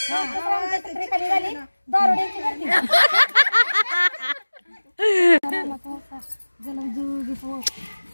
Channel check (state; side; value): inverted; both; correlation -1.00